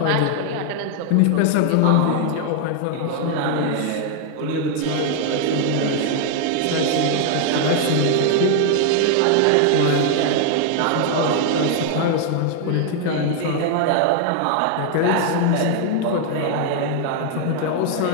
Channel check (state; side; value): different; both; correlation 0.00